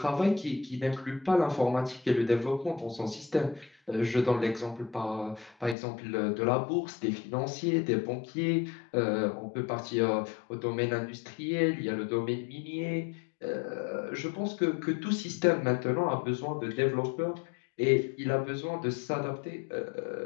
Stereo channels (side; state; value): right; drops out; at 5.8 s